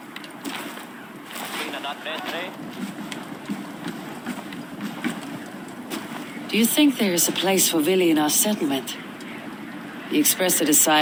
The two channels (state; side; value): identical; both; correlation 1.00